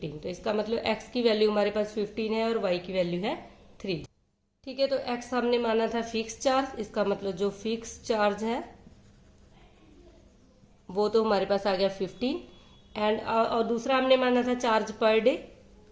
तो इसका मतलब x की वैल्यू हमारे पास 15 है और y की वैल्यू है 3। ठीक है, तो x हमने माना था फिक्स चार्ज, इसका मतलब जो फिक्स चार्ज है वो तो हमारे पास आ गया 15 एंड और दूसरा हमने माना था charge per day,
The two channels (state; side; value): identical; both; correlation 1.00